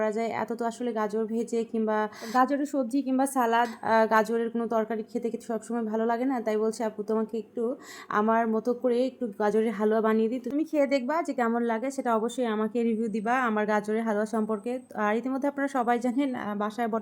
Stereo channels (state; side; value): identical; both; correlation 1.00